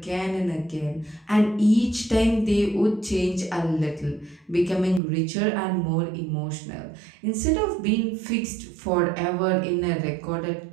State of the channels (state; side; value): drops out; left; at 5.0 s